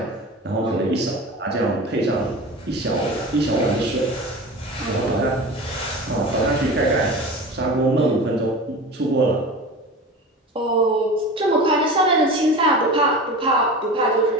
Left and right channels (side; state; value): both; normal; correlation 0.33